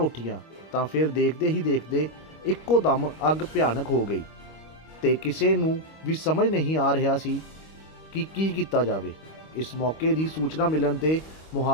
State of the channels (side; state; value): right; late; 25 ms